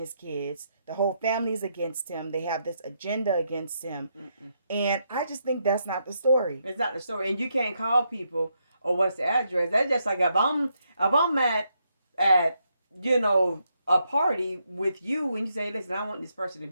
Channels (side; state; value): both; inverted; correlation -0.79